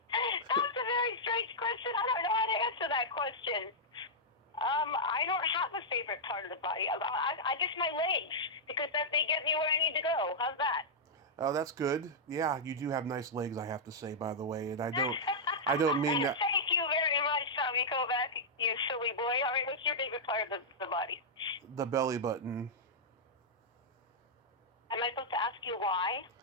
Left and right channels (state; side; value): normal; both; correlation -0.08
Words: a very strange question. I don't know how to answer that question. I don't have a favorite part of the body. I guess my legs, because they get me where I need to go. How's that? Oh, that's good. Yeah, you do have nice legs, I have to say, by the way, and I don't mean that. Thank you very much, Tommy Kovac, you silly boy. All right, what's your favorite part of the body? The belly button. Am I supposed to ask you why?